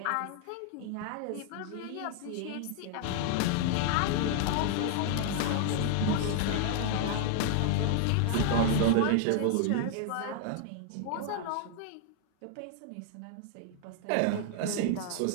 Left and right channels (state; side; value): different; both; correlation 0.00